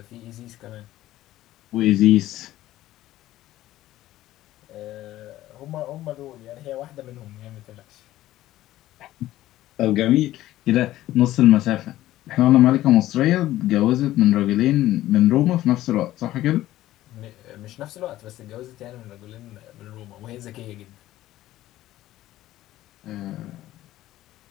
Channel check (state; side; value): quieter; right; 14.9 dB